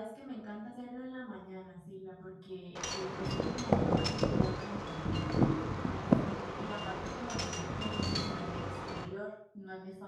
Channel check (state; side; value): identical; both; correlation 1.00